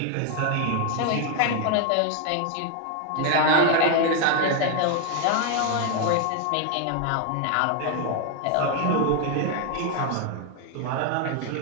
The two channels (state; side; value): different; both; correlation 0.01